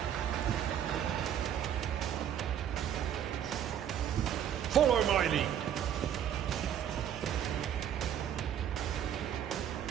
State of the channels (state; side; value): quieter; left; 9.7 dB